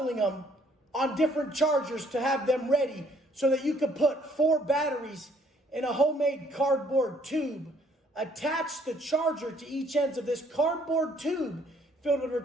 them on different chargers to have them ready so that you could put 4 batteries in a homemade cardboard tube, attach the charger to each ends of this cardboard tube filled with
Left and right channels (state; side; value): normal; both; correlation 0.64